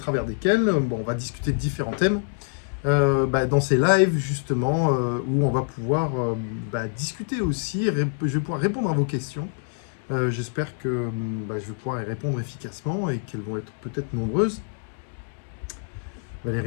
desquels on va discuter de différents thèmes dans ces lives justement où on va pouvoir discuter aussi, je vais pouvoir répondre à vos questions. J'espère que je vais pouvoir y répondre efficacement et qu'elles vont être peut-être nombreuses.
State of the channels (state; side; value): silent; right; 58 dB below the other